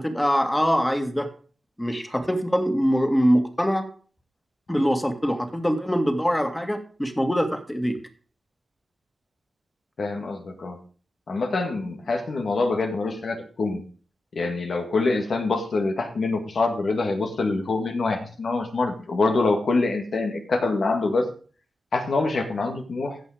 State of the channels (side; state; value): both; normal; correlation 0.93